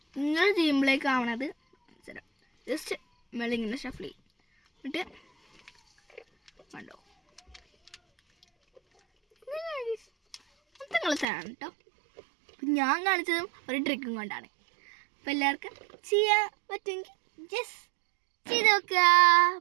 ഇങ്ങനെ ചെയ്യുമ്പോഴേക്കാവണത് ജസ്റ്റ് മേളിങ്ങനെ ഷഫിൾ ചെയ്യും. എന്നിട്ട് കണ്ടോ, മൊത്തം കളത്തരാണ് കേട്ടോ. ഞാൻ കാണിച്ചതും ഒരു ട്രിക്കും കൊണ്ടാണ്. അപ്പോൾ എല്ലാവർക്കും ചെയ്യാൻ പറ്റുമെങ്കിൽ ജസ്റ്റ് ചെയ്ത് നോക്കുക.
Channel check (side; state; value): left; drops out; at 11.2 s